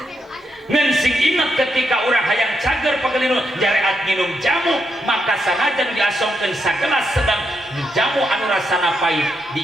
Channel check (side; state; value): both; normal; correlation 0.81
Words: Ngan sing ingat ketika urang hayang cager pagelinu jareat nginum jamu, maka sanajan diasongkeun sagelas sedang jamu anu rasana pait